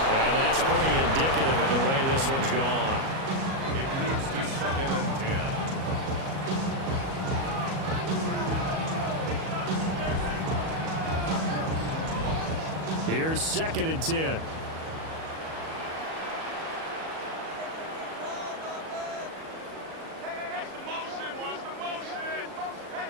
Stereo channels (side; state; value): left; late; 37 ms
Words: And that's pretty indicative of the way this one's gone. It leads to 2nd and 10. Here's 2nd and 10.